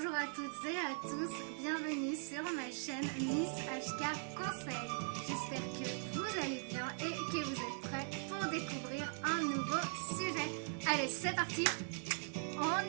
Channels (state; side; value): silent; left; 51 dB below the other